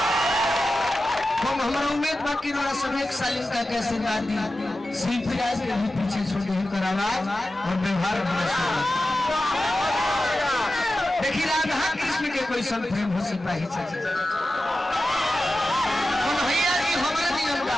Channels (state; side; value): normal; both; correlation 0.93